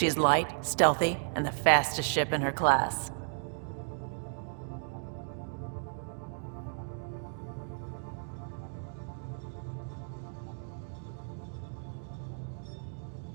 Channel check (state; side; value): silent; left; digital silence